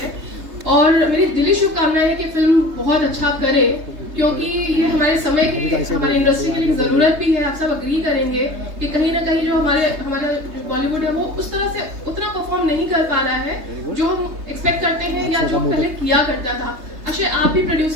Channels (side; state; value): left; late; 3.3 ms